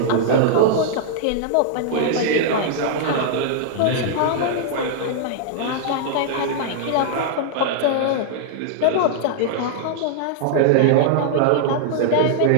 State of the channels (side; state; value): both; different; correlation -0.01